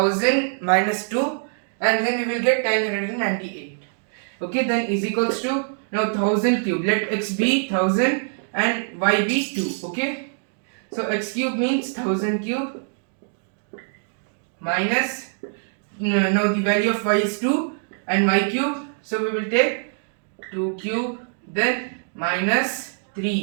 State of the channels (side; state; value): left; silent; digital silence